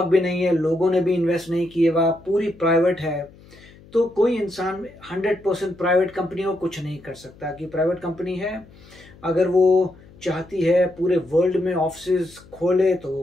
भी नहीं है, लोगों ने भी इन्वेस्ट नहीं किए, वह पूरी प्राइवेट है, तो कोई इंसान 100% प्राइवेट कंपनी को कुछ नहीं कर सकता। कि प्राइवेट कंपनी है, अगर वो चाहती है पूरे वर्ल्ड में ऑफिस खोले तो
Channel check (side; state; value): left; noise; hum, 24 dB below the sound